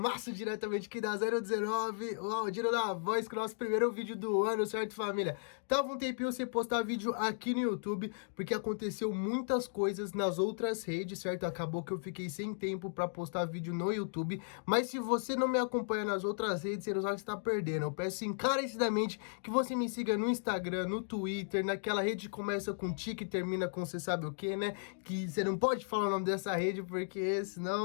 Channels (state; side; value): silent; right; digital silence